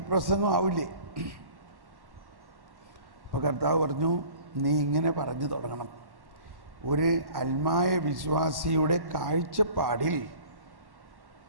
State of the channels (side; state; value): left; late; 1.1 ms